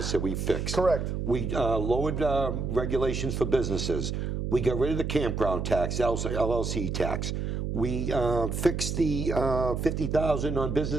we fixed. Correct. We lowered regulations for businesses. We got rid of the campground tax, LLC tax. We fixed the $50,000 on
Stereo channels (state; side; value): noise; right; hum, 2 dB below the sound